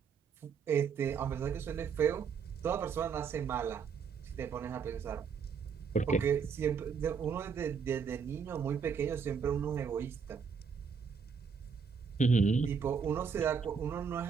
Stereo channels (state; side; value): quieter; left; 6.2 dB